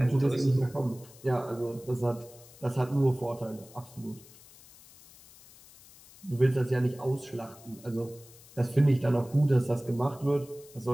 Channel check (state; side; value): noise; left; hiss, 22 dB below the sound